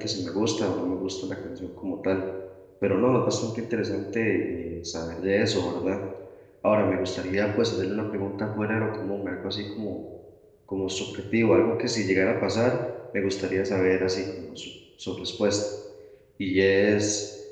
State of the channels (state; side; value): identical; both; correlation 1.00